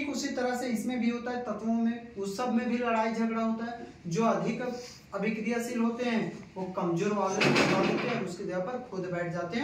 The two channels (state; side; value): identical; both; correlation 1.00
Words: उसी तरह से इसमें भी होता है, तत्वों में, उस सब में भी लड़ाई झगड़ा होता है। जो अधिक अभिक्रियाशील होते हैं वो कमजोर वाले होते हैं, उसके जगह पर खुद बैठ जाते